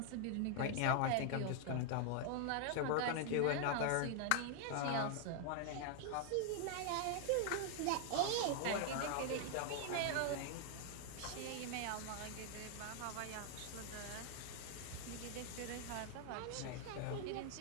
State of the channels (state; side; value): different; both; correlation 0.00